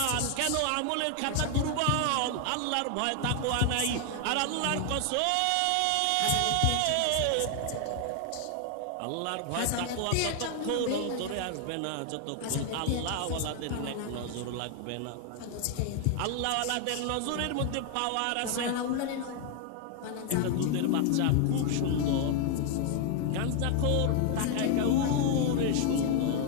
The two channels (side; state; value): both; different; correlation 0.00